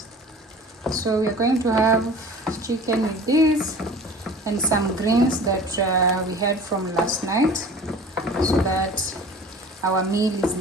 So we're going to have chicken with this and some greens that we had from last night, so that our meal is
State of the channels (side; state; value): both; normal; correlation 0.42